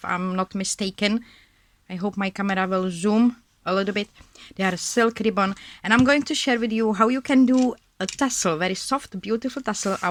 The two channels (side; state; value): both; identical; correlation 1.00